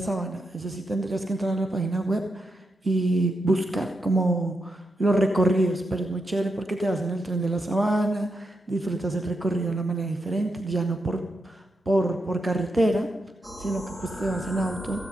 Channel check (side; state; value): both; normal; correlation 0.84